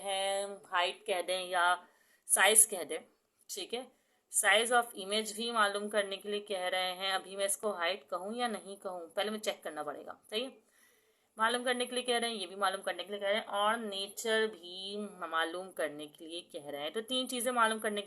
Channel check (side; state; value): both; identical; correlation 1.00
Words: हाइट कह दें या साइज कह दें, ठीक है। साइज ऑफ इमेज भी मालूम करने के लिए कह रहे हैं। अभी मैं इसको हाइट कहूँ या नहीं कहूँ, पहले मैं चेक करना पड़ेगा, सही है। मालूम करने के लिए कह रहे हैं, ये भी मालूम करने के लिए कह रहे हैं, और नेचर भी मालूम करने के लिए कह रहे हैं। तो 3 चीज़ें मालूम करने